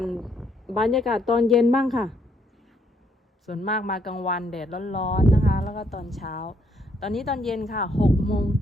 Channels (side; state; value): both; normal; correlation 0.71